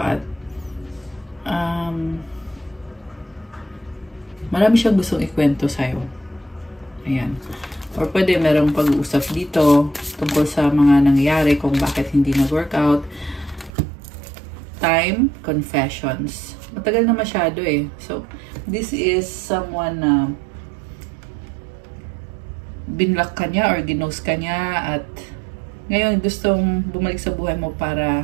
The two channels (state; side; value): drops out; left; at 13.7 s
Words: marami siyang gustong ikwento sa'yo. Ayan. Or pwede merong pag-uusap dito tungkol sa mga nangyari kung bakit hindi nag-workout. Time, confessions. Matagal na masyado eh. So, this is someone na binlock ka niya or ginost ka niya at ngayon gustong bumalik sa buhay mo